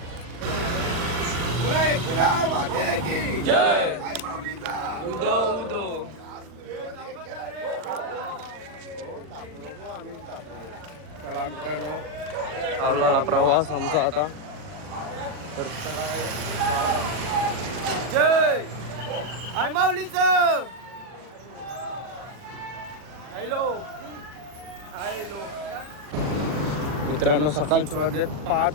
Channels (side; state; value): left; late; 40 ms